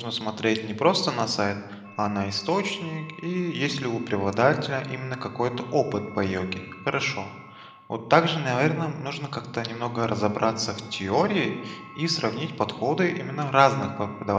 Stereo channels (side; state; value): both; identical; correlation 1.00